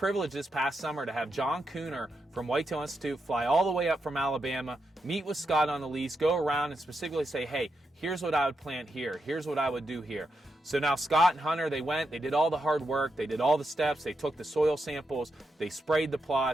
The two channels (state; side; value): normal; both; correlation 0.84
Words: this past summer to have John Cooner from Whitetail Institute fly all the way up from Alabama, meet with Scott on the lease, go around and specifically say, hey, here's what I would plant here, here's what I would do here. So now Scott and Hunter, they went, they did all the hard work, they did all the steps, they took the soil samples, they sprayed the